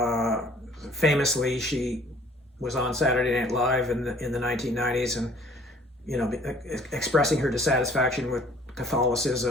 Famously, she was on Saturday Night Live in the 1990s, and you know, expressing her dissatisfaction with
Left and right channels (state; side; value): normal; both; correlation 0.55